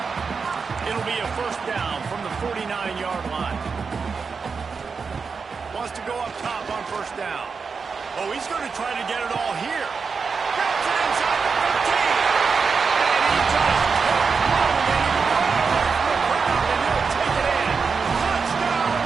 It'll be a first down from the 49-yard line. Wants to go up top on first down. Oh, he's going to try to get it all here. Gets it inside the 15. And he just kept running, and he runs from the ground, and he'll take it in. Touchdown,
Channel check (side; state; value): left; quieter; 5.2 dB